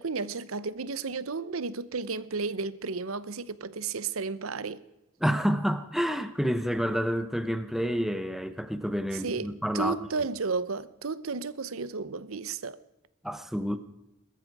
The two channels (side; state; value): both; normal; correlation 0.51